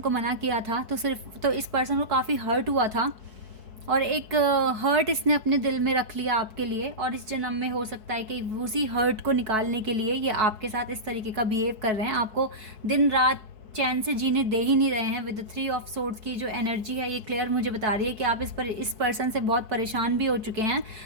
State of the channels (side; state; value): left; late; 4.6 ms